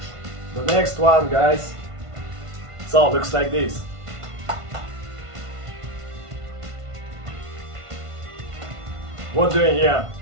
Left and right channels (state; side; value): late; left; 1.5 ms